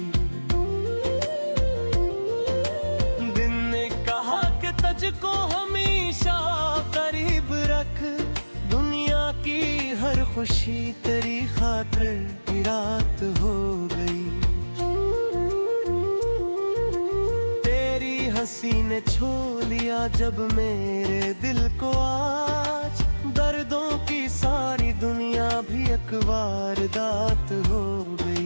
दिन ने कहा कि तुझको हमेशा करीब रख, दुनिया की हर खुशी तेरी खातिर की रात हो गई। हंसी ने छू लिया जब मेरे दिल को, आज दर्दों की सारी दुनिया भी एक वारदात हो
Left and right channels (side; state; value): both; inverted; correlation -1.00